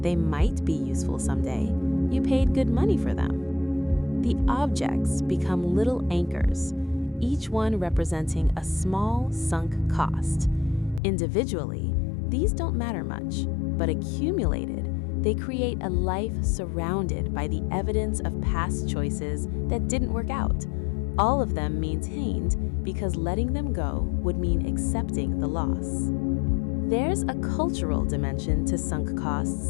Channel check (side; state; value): right; drops out; at 11.0 s